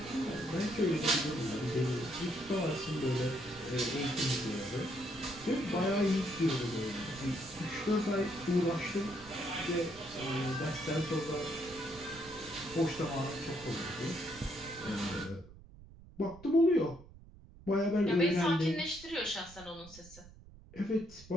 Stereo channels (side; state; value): right; noise; rumble, 19 dB below the sound